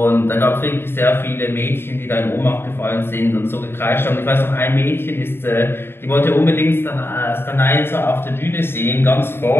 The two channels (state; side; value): late; right; 0.11 ms